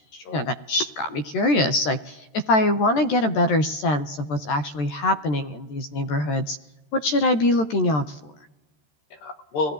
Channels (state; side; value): late; right; 13 ms